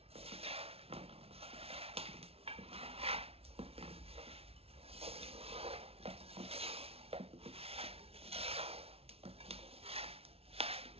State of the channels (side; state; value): left; late; 0.29 ms